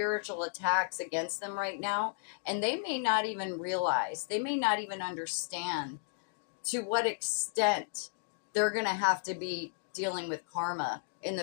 attacks against them right now, and they may not even realize, they may not even understand to what extent they're going to have to be dealing with karma in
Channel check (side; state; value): right; silent; digital silence